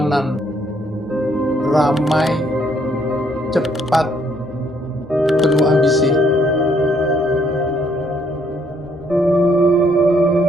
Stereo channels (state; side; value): normal; both; correlation 0.69